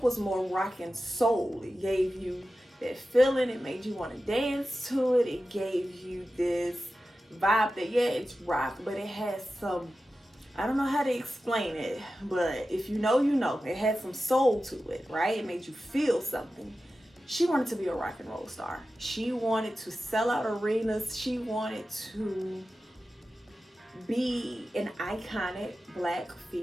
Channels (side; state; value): both; normal; correlation 0.93